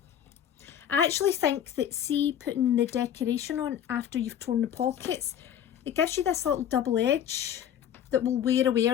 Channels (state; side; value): quieter; right; 9.6 dB